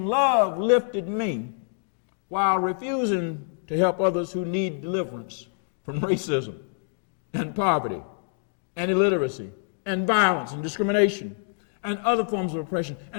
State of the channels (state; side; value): silent; right; digital silence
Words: "Love Lifted Me" while refusing to help others who need deliverance from racism and poverty and illiteracy and violence and discrimination and other forms of oppression.